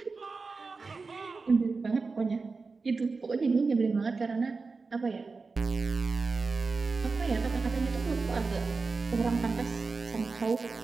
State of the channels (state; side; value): quieter; left; 4.2 dB